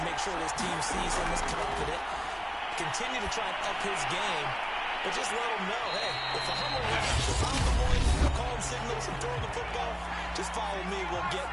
make sure his team sees him as confident. Continue to try and up his game, but just let him know, hey, if I'm around, if I'm the one calling signals and throwing the football, just follow me, we'll get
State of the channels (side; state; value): both; identical; correlation 1.00